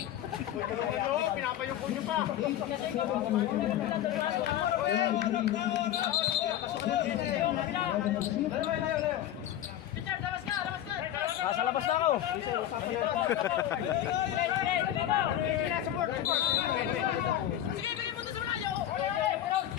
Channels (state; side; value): quieter; right; 11.8 dB